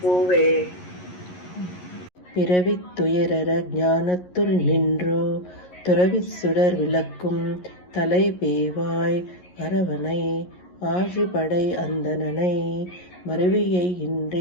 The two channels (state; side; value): late; right; 11 ms